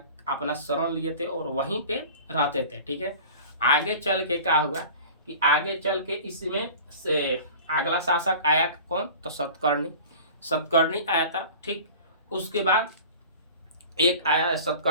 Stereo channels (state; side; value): inverted; both; correlation -0.40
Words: अपना शरण लिए थे और वहीं पे रहते थे, ठीक है। आगे चल के क्या हुआ कि आगे चल के इसमें से अगला शासक आया कौन तो सतकर्णी आया था, ठीक। उसके बाद एक आया